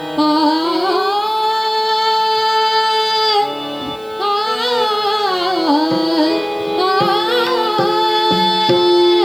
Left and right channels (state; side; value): noise; right; hiss, 29 dB below the sound